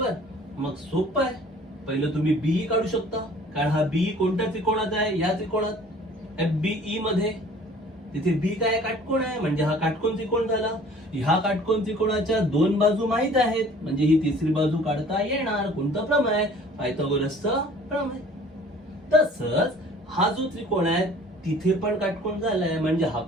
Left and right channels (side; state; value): both; normal; correlation 0.50